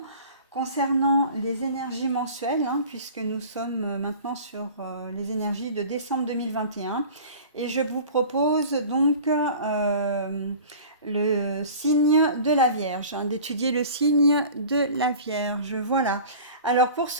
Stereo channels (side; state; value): both; inverted; correlation -0.41